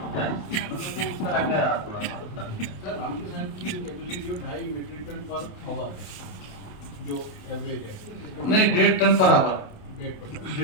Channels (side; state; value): right; late; 27 ms